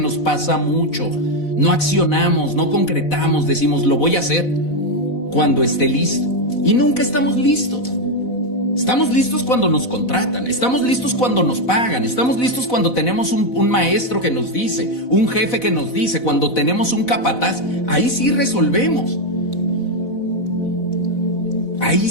pasa mucho. No accionamos, no concretamos, decimos lo voy a hacer cuando esté listo, y nunca estamos listos. Estamos listos cuando nos contratan, estamos listos cuando nos pagan, estamos listos cuando tenemos un maestro que nos dice, un jefe que nos dice, cuando tenemos un capataz. Ahí sí resolvemos.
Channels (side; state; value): right; late; 4.0 ms